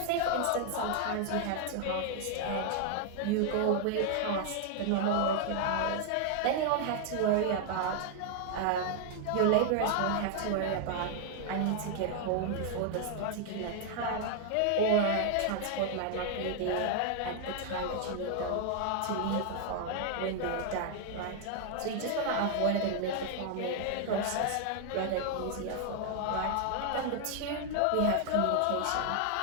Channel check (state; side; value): different; both; correlation 0.00